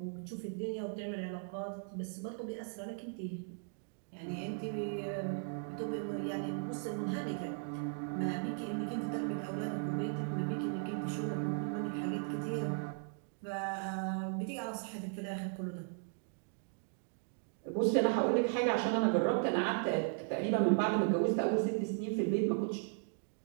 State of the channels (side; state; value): left; silent; 53 dB below the other